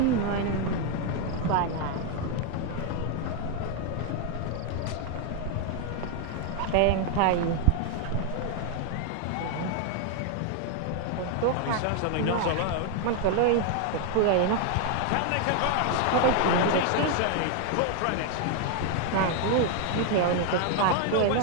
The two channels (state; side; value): different; both; correlation 0.01